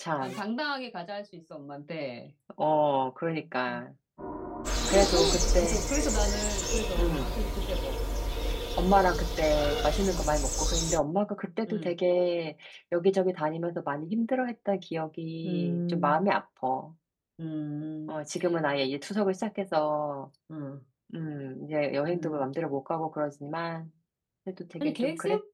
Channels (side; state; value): both; identical; correlation 1.00